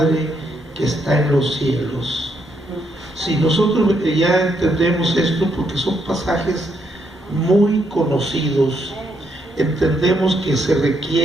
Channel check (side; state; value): both; normal; correlation 0.76